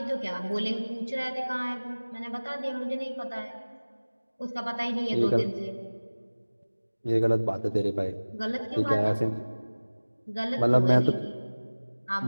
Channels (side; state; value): both; inverted; correlation -1.00